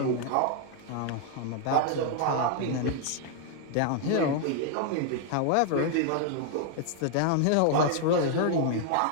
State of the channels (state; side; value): different; both; correlation 0.00